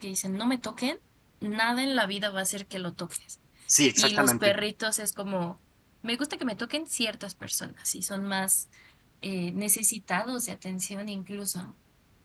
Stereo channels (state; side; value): identical; both; correlation 1.00